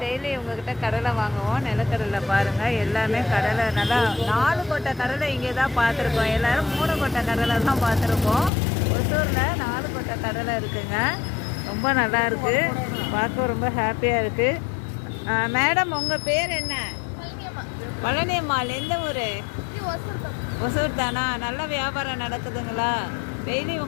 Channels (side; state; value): right; drops out; at 8.5 s